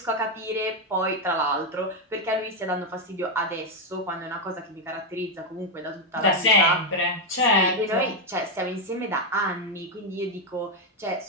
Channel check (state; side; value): normal; both; correlation 0.04